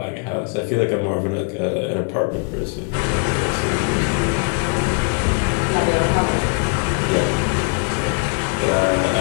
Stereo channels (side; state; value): right; quieter; 38.5 dB